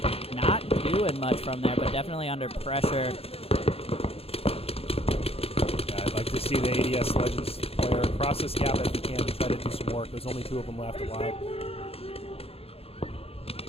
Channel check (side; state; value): right; late; 0.28 ms